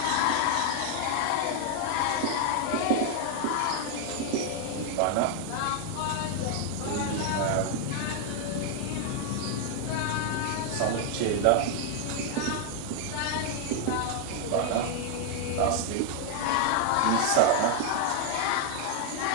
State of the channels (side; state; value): both; different; correlation 0.00